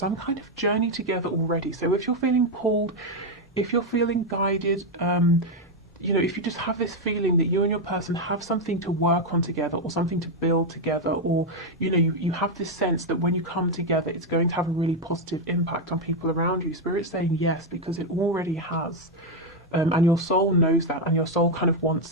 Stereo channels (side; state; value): both; normal; correlation 0.04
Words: kind of journey together already. So if you're feeling pulled, if you're feeling guided, you know, if you just have this feeling that you and your person have something to work on together or something to build together, or, you know, you have this sense that when you come together, it's going to have a really positive impact on people around you. Spirit's saying yes, because it already has. And your soul knows that, and your soul kind of